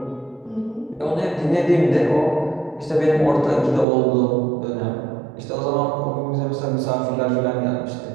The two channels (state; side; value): drops out; left; at 3.9 s